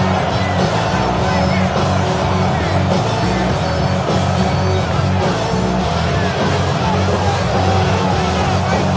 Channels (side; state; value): both; identical; correlation 1.00